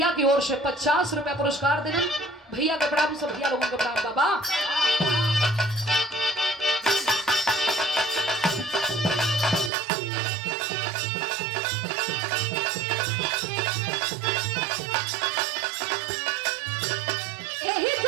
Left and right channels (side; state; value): left; drops out; at 9.7 s